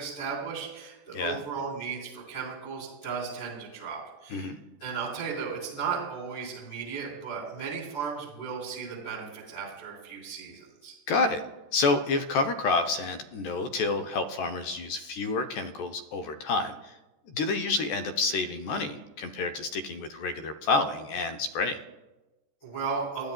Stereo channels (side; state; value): right; late; 14 ms